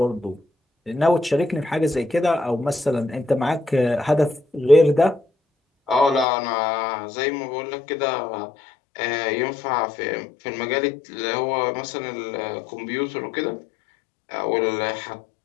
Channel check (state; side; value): drops out; right; at 6.2 s